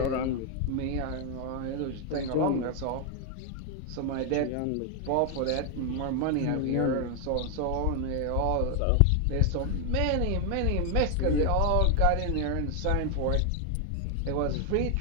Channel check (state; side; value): different; both; correlation 0.00